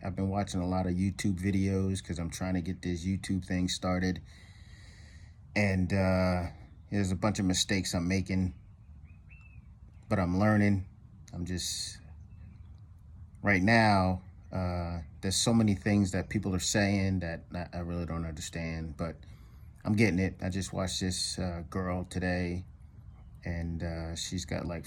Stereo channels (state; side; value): identical; both; correlation 1.00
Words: I've been watching a lot of YouTube videos because I'm trying to get this YouTube thing started. And there's a bunch of mistakes I'm making, but I'm learning. I'm just right now, there's so many things that people are saying that I really don't understand, but I'm getting it. I just watched this girl today, and she's got like